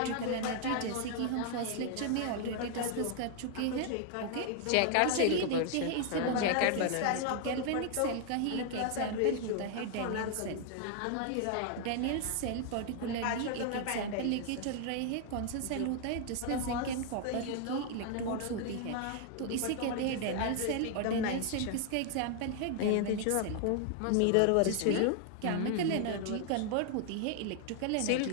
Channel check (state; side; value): different; both; correlation 0.00